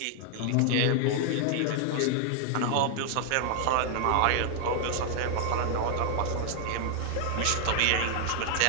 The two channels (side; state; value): both; different; correlation 0.00